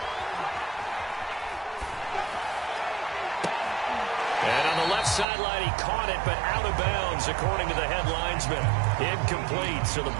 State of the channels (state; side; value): drops out; left; at 5.2 s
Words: And on the left sideline, he caught it, but out of bounds, according to the head linesman. Incomplete, so the